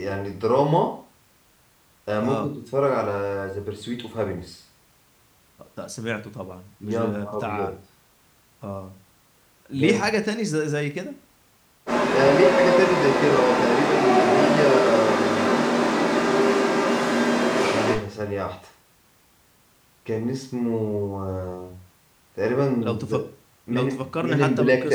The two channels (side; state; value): both; identical; correlation 1.00